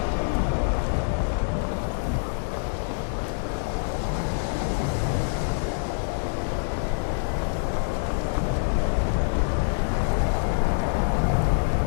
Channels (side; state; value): right; silent; digital silence